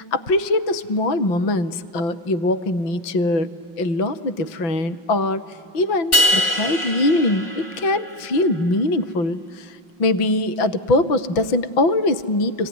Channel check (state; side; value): late; right; 5.5 ms